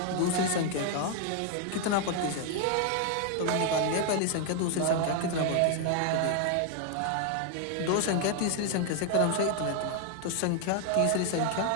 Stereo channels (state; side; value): different; both; correlation 0.00